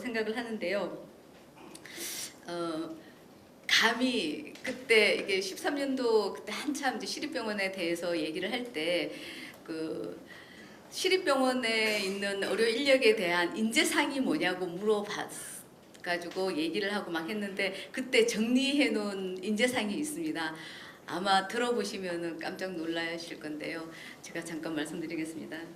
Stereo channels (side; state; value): both; identical; correlation 1.00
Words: 하는데요. 감히 그때 이게 13년도 그때 한참 이제 시립병원에 대해서 얘기를 할 때 그 시립병원에 있는 의료 인력에 대한 인재상이 뭐냐고 물어가지고 얘기를 하고 막 했는데 그때 정리해 놓은 인재상이 있습니다. 아마 들어보시면은 깜짝 놀라실 건데요. 제가 잠깐 말씀드리겠습니다.